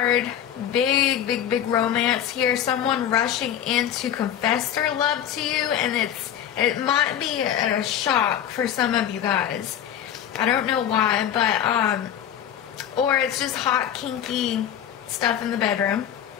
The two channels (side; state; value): right; quieter; 9.9 dB